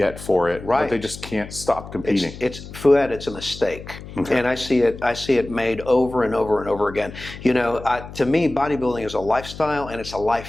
for it, right? But they just can't stop competing. Fouad, it's a mistake, and I see it made over and over and over again. To me, bodybuilding is a lifestyle and it's a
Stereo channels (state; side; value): noise; left; hum, 14 dB below the sound